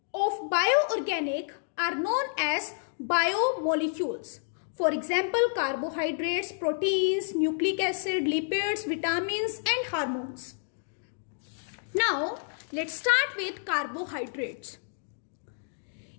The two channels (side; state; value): right; silent; digital silence